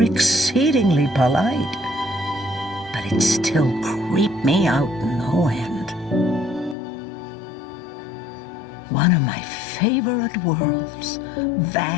exceedingly polite, but it still creeped me out no end. One of my favorite worlds,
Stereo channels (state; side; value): drops out; right; at 6.8 s